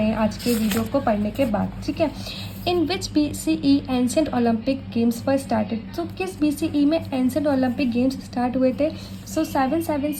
हैं आज के वीडियो को पढ़ने के बाद। ठीक है, इन विच BCE ancient Olympic games were started, तो किस BCE में एंशिएंट ओलंपिक गेम्स स्टार्ट हुए थे, सो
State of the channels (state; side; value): identical; both; correlation 1.00